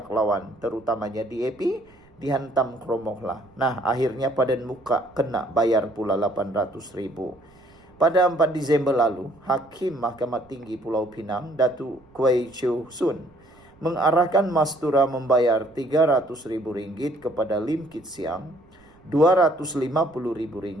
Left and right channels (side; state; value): right; noise; rumble, 29 dB below the sound